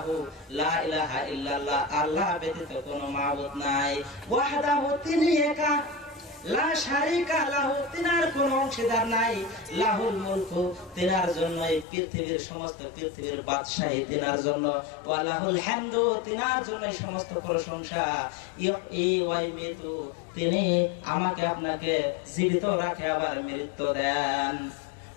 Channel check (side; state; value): right; drops out; at 11.9 s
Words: লা ইলাহা ইল্লাল্লাহ, আল্লাহ ব্যতীত কোনো মাবুদ নাই, ওয়াহদাহু তিনি একা, লা শারীকা লাহু তিনার কোনো অংশীদার নাই, লাহুল মুলকু তিনার জন্য এই পৃথিবীর সমস্ত পৃথিবীর বাদশাহী তিনার জন্য, ওয়া লাহুল হামদু তিনার জন্য সমস্ত প্রশংসা, ইহয়ি ওয়া ইউমীতু তিনি আমাকে আপনাকে জীবিত রাখে আবার মৃত্যু দেন,